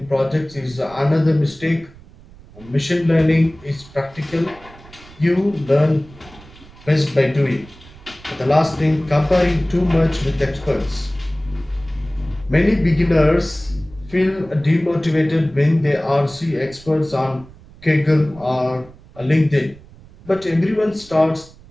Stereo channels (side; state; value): right; noise; rumble, 22 dB below the sound